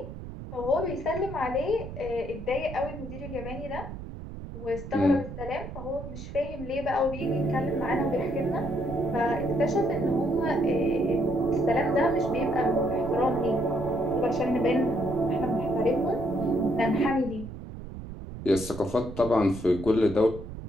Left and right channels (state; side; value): noise; right; rumble, 10 dB below the sound